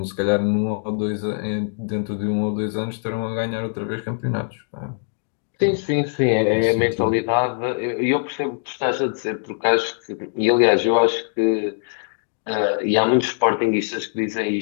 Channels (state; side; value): silent; right; digital silence